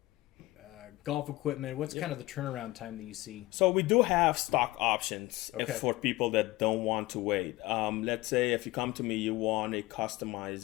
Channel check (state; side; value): quieter; right; 19.2 dB